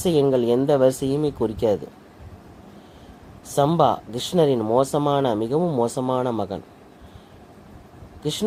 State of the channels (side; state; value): both; identical; correlation 1.00